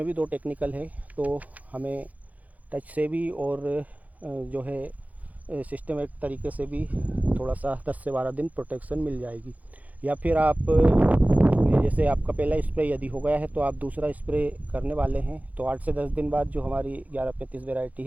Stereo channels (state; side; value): late; left; 0.075 ms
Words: भी 2 टेक्निकल है। तो हमें टच से भी और जो है सिस्टमेटिक तरीके से भी थोड़ा सा 10 से 12 दिन प्रोटेक्शन मिल जाएगी। या फिर आप जैसे आपका पहला स्प्रे यदि हो गया है तो आप दूसरा स्प्रे करने वाले हैं तो 8 से 10 दिन बाद जो हमारी 1135 वैरायटी